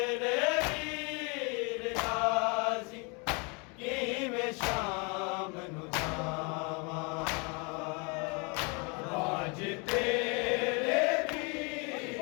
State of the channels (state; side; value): quieter; right; 32.2 dB